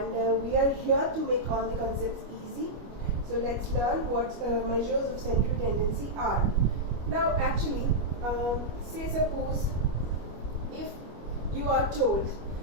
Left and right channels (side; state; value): left; late; 25 ms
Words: we are here to make all the concepts easy. So let's learn what measures of central tendency are. Now actually, say suppose if you are told